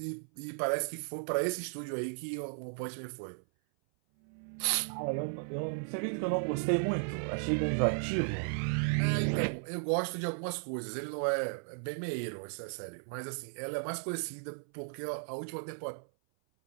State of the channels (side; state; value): left; silent; 54 dB below the other